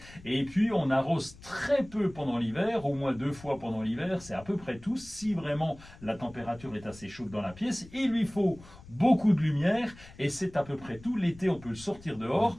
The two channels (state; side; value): noise; left; rumble, 20 dB below the sound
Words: Et puis on arrose très peu pendant l'hiver, au moins 2 fois pendant l'hiver. C'est à peu près tout. Si vraiment la température est assez chaude dans la pièce, il lui faut beaucoup de lumière et c'est à peu près tout. L'été, on peut le sortir dehors,